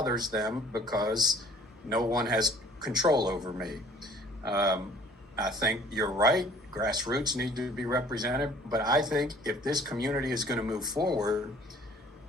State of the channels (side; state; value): both; normal; correlation 0.53